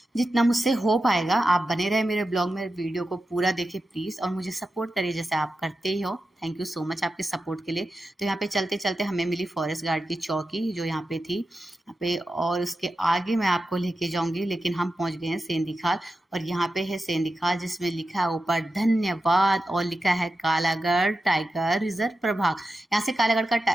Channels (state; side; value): normal; both; correlation 0.91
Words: जितना मुझसे हो पाएगा। आप बने रहे मेरे ब्लॉग में, वीडियो को पूरा देखें प्लीज़, और मुझे सपोर्ट करिए जैसे आप करते ही हो। थैंक यू सो मच आपके सपोर्ट के लिए। तो यहाँ पे चलते चलते हमें मिली फॉरेस्ट गार्ड की चौकी जो यहाँ पे थी यहाँ पे, और उसके आगे मैं आपको लेके जाऊंगी, लेकिन हम पहुंच गए हैं सेंधी खाल। और यहाँ पे है सेंधी खाल जिसमें लिखा है ऊपर धन्यवाद और लिखा है कालागढ़ टाइगर रिजर्व प्रभाग। यहाँ से कालागढ़ का